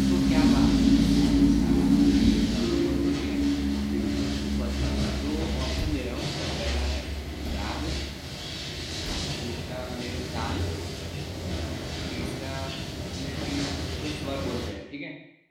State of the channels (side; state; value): both; identical; correlation 1.00